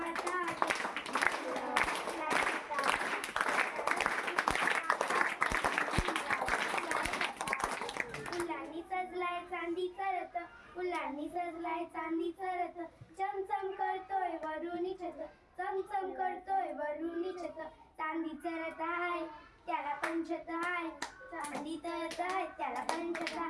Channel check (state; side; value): identical; both; correlation 1.00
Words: फुलांनी सजलाय चांदीचा रथ फुलांनी सजलाय चांदीचा रथ चमचम करतोय वरुणी छत चमचम करतोय वरुणी छत चांदीचा रथ आहे त्याला पंचत आहे चांदीचा रथ आहे त्याला पंचत